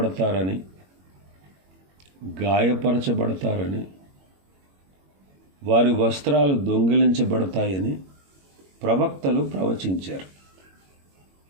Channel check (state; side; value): late; left; 21 ms